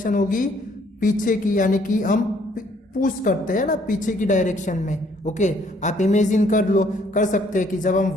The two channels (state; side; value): normal; both; correlation 0.64